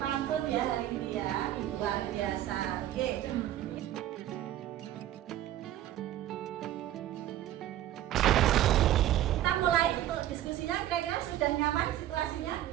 ya hari ini ya. Luar biasa. Oke. Kita mulai untuk diskusinya. Kira-kira sudah nyaman situasinya?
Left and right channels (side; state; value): left; quieter; 12.9 dB